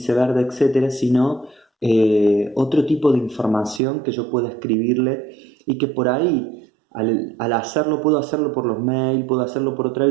verde, etcétera, sino otro tipo de información que yo pueda escribirle y que por ahí, al hacerlo, puedo hacerlo por los mails, puedo hacerlo por otra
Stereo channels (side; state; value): left; drops out; at 3.8 s